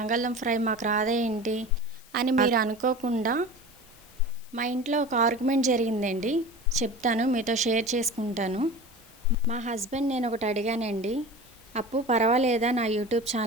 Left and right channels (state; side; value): noise; left; hiss, 24 dB below the sound